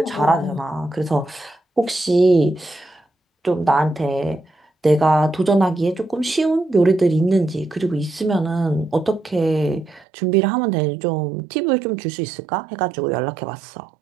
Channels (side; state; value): left; drops out; at 10.1 s